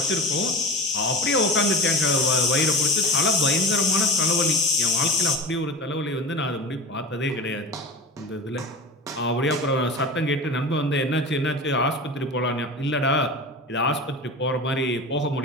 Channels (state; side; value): normal; both; correlation 0.31